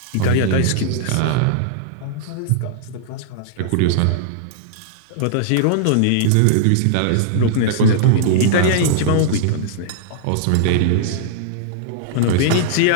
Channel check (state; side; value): different; both; correlation -0.01